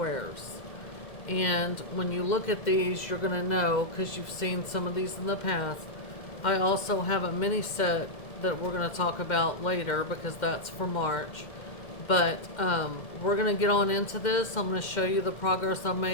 And when you look at these, you're going to know, because you've seen some of these in the past. I also have a mini set that we're going to talk about later because that's for March. But we're going to get on into this. I'm going to show you the progress I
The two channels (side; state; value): right; late; 2.0 ms